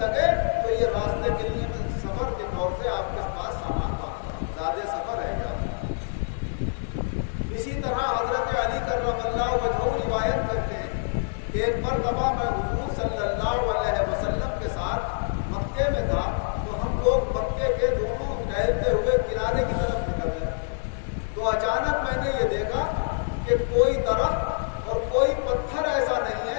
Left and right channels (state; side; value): silent; right; digital silence